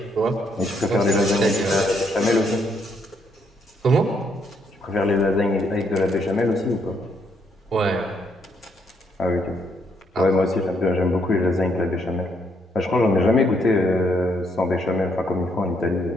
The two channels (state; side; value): normal; both; correlation 0.73